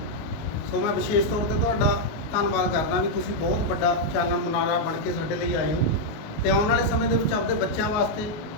ਸੋ ਮੈਂ ਵਿਸ਼ੇਸ਼ ਤੌਰ ਤੇ ਤੁਹਾਡਾ ਧੰਨਵਾਦ ਕਰਦਾ ਵੀ ਤੁਸੀਂ ਬਹੁਤ ਵੱਡਾ ਚਾਨਣ ਮੁਨਾਰਾ ਬਣ ਕੇ ਸਾਡੇ ਲਈ ਆਏ ਹੋ, ਤੇ ਆਉਣ ਵਾਲੇ ਸਮੇਂ ਦੇ ਵਿੱਚ ਆਪਣੇ ਬੱਚਿਆਂ ਵਾਸਤੇ,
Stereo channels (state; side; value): late; right; 19 ms